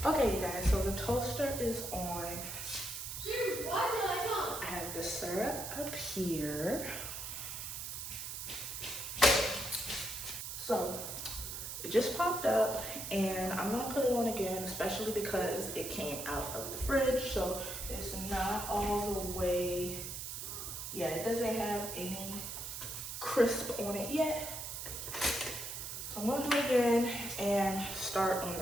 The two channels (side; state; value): right; noise; hiss, 6 dB below the sound